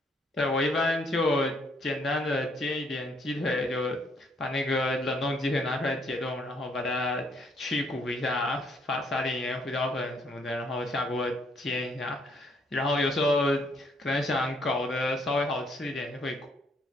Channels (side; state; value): both; normal; correlation 0.68